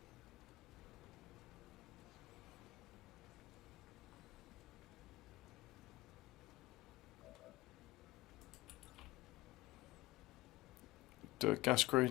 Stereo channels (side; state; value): right; quieter; 18.3 dB